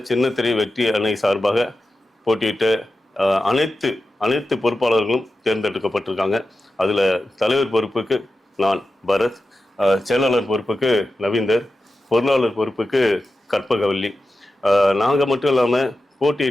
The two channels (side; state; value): both; normal; correlation 0.92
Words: சின்னத்திரை வெற்றி அணி சார்பாக போட்டியிட்ட அனைத்து பொறுப்பாளர்களும் தேர்ந்தெடுக்கப்பட்டிருக்காங்க. அதில் தலைவர் பொறுப்புக்கு நான் பரத், செயலாளர் பொறுப்புக்கு நவீந்தர், பொருளாளர் பொறுப்புக்கு கற்பகவல்லி. நாங்கள் மட்டும் இல்லாமல்